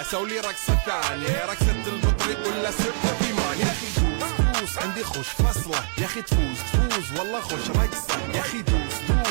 سوي رقصة ثانية رقصة البطريق ولا سبة ثمان يا اخي دوس دوس عندي خوش فصلة يا اخي تفوز تفوز والله خوش رقصة يا اخي دوس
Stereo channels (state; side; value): silent; left; 62 dB below the other